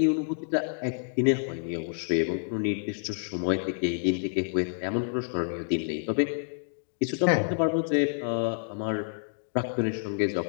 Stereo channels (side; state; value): right; silent; digital silence